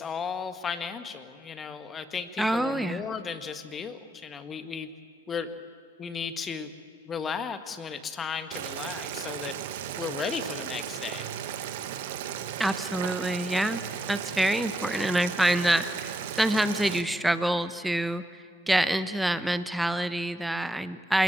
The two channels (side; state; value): both; normal; correlation 0.80